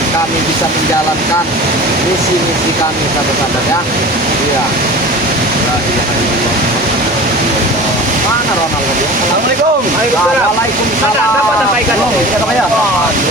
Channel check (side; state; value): both; normal; correlation 0.37